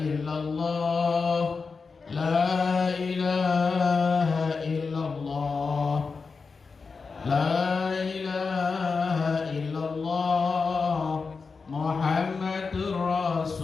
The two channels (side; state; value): right; quieter; 4.7 dB